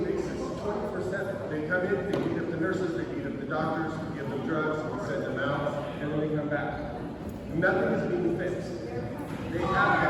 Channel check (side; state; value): both; identical; correlation 1.00